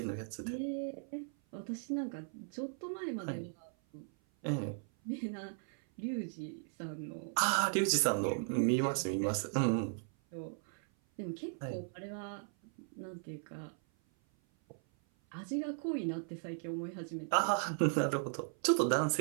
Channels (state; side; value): silent; left; 53 dB below the other